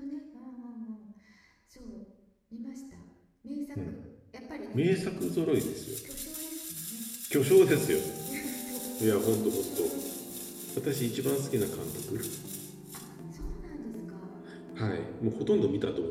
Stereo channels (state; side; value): identical; both; correlation 1.00